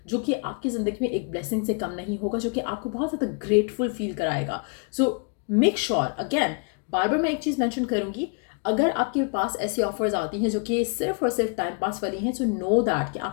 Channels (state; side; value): quieter; right; 38.5 dB